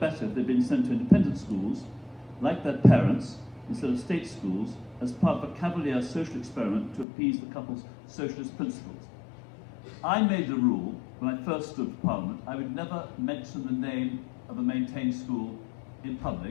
if they'd been sent to independent schools, like their parents, instead of state schools, as part of a cavalier social experiment to appease the couple's socialist principles. I made a rule, when I first stood for Parliament, I would never mention the name of a maintained school in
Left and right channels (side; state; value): right; drops out; at 7.1 s